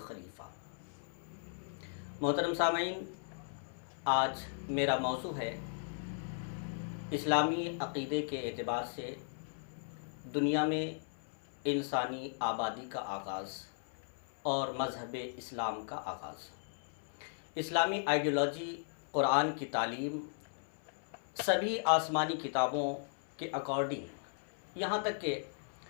मोहतरम सामईन, आज मेरा मौज़ू है इस्लामी अक़ीदे के एतबार से दुनिया में इंसानी आबादी का आगाज़ और मज़हब इस्लाम का आगाज़। इस्लामी आइडियोलॉजी, कुरान की तालीम, सभी आसमानी किताबों के अकॉर्डिंग यहाँ तक कि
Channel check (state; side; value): silent; right; 53 dB below the other